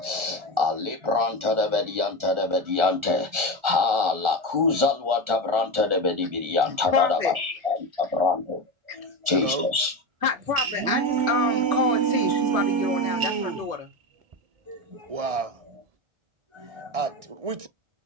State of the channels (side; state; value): left; late; 1.4 ms